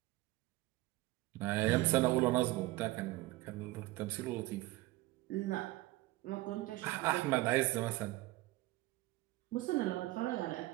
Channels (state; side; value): quieter; left; 18.6 dB